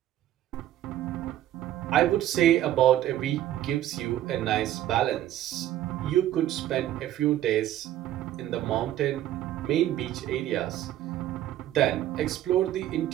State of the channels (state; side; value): quieter; left; 12.8 dB